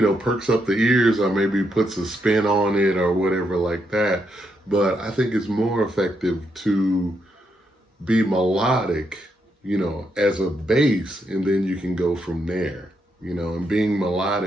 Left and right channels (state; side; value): normal; both; correlation 0.79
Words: perks up the ears or maybe puts a spin on it or whatever like that. But I think it's more effective to be melodic, as a base, and then you can go from there, and being